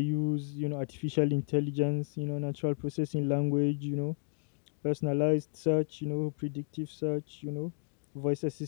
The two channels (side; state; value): right; silent; digital silence